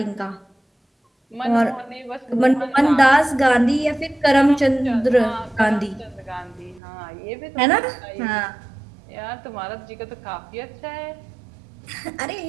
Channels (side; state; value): left; drops out; at 6.8 s